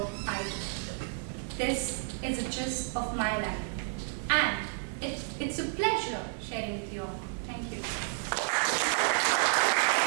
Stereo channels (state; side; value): silent; left; 57 dB below the other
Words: I do. This is a gist of my life, and it's a pleasure sharing with you all. Thank you.